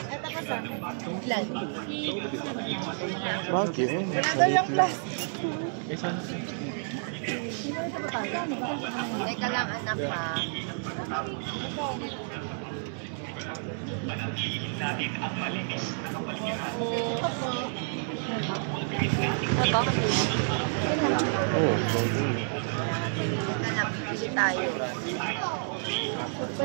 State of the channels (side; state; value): left; silent; digital silence